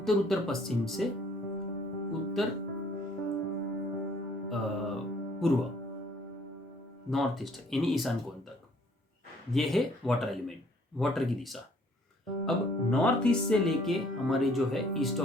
उत्तर पश्चिम से उत्तर पूर्व, नॉर्थ ईस्ट यानी ईशान कोण तक, ये है वाटर एलिमेंट, वाटर की दिशा। अब नॉर्थ ईस्ट से लेके हमारी जो है ईस्ट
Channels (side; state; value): both; normal; correlation 0.60